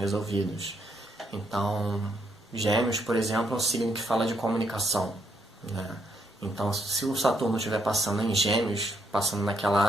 Então, Gêmeos, por exemplo, é um signo que fala de comunicação, né? Então, se o Saturno estiver passando em Gêmeos, passando naquela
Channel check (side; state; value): both; normal; correlation 0.75